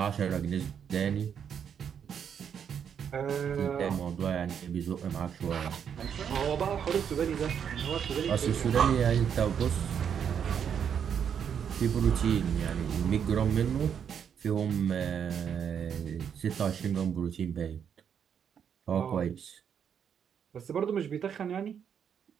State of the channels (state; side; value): quieter; left; 7.9 dB